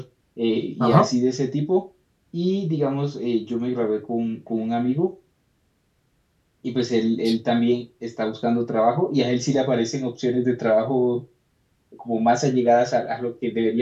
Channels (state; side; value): identical; both; correlation 1.00